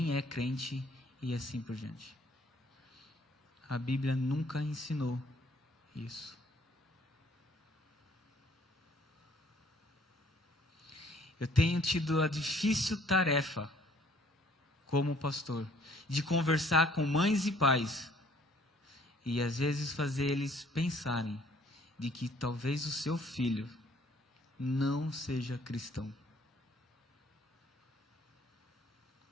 é crente e assim por diante. A Bíblia nunca ensinou isso. Eu tenho tido a difícil tarefa, como pastor, de conversar com mães e pais e às vezes fazer eles pensarem de que talvez o seu filho não seja cristão.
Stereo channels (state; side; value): normal; both; correlation 0.60